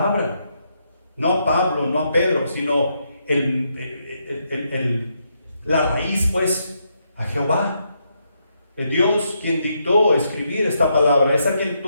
No a Pablo, no a Pedro, sino la raíz, pues, a Jehová. Dios quien dictó escribir esta palabra, es a quien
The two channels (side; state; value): both; inverted; correlation -0.79